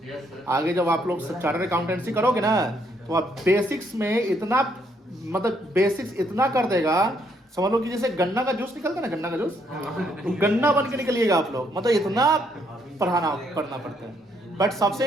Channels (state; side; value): normal; both; correlation 0.71